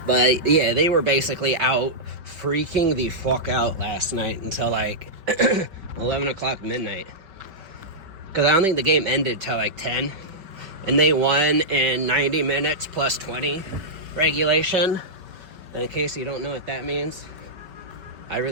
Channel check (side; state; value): left; late; 5.2 ms